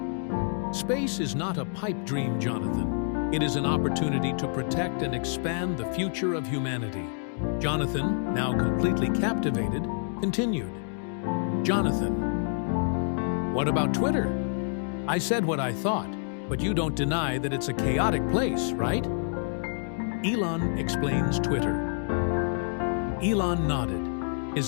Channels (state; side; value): silent; right; digital silence